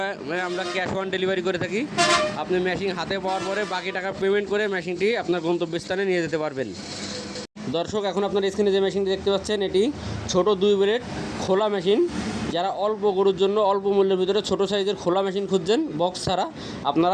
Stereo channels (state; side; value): identical; both; correlation 1.00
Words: আমরা ক্যাশ অন ডেলিভারি করে থাকি। আপনি মেশিন হাতে পাওয়ার পরে বাকি টাকা পেমেন্ট করে মেশিনটি আপনার গন্তব্যস্থানে নিয়ে যেতে পারবেন। দর্শক, এখন আপনার স্ক্রিনে যে মেশিনটি দেখতে পাচ্ছেন, এটি ছোট 2 ব্লেড খোলা মেশিন। যারা অল্প গরুর জন্য অল্প মূল্যের ভিতরে ছোট সাইজের খোলা মেশিন খুঁজছেন বক্স ছাড়া,